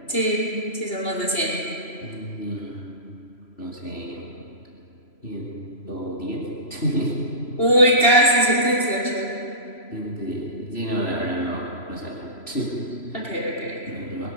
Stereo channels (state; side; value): late; right; 3.0 ms